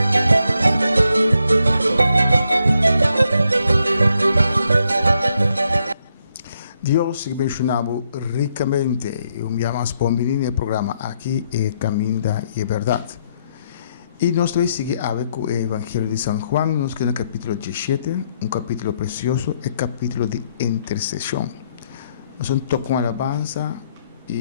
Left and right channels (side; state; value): both; inverted; correlation -0.76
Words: Deus te abençoe ricamente. Eu me chamo Spombini no programa aqui é Caminho da Verdade. E nós vamos seguir com o Evangelho de São Juan, nós que no capítulo 17, capítulo precioso, é capítulo de intercessão. Nós vamos tocar uma alabanza